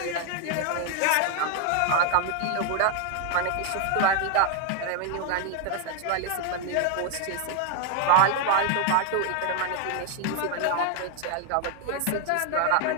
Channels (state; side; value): different; both; correlation 0.00